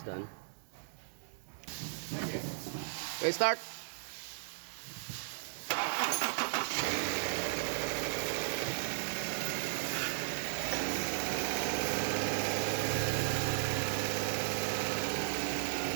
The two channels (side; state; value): left; silent; 54 dB below the other